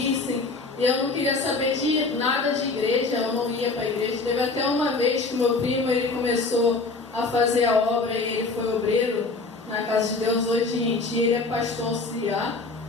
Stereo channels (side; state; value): right; quieter; 3.6 dB